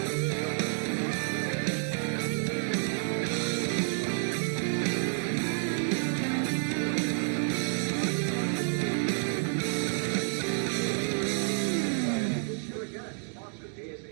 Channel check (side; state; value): left; silent; 58 dB below the other